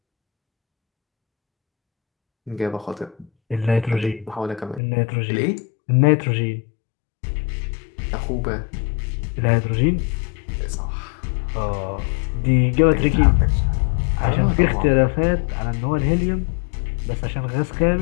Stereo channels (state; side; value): drops out; right; at 4.8 s